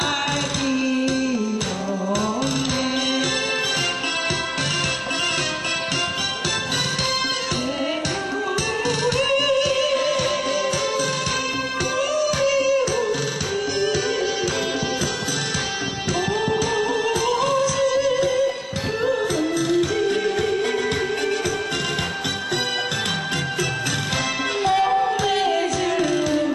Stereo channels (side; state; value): both; identical; correlation 1.00